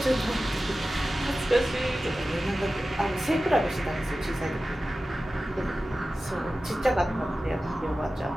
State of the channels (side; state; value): both; normal; correlation 0.95